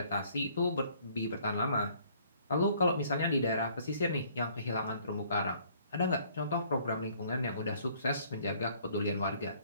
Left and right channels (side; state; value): both; inverted; correlation -0.60